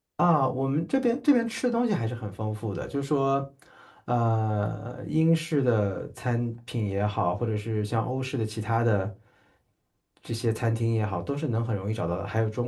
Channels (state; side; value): identical; both; correlation 1.00